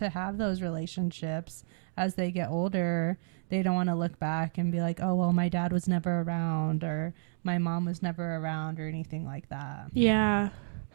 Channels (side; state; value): left; silent; digital silence